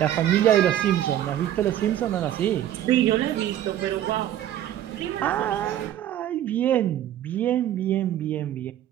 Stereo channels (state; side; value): quieter; left; 11.7 dB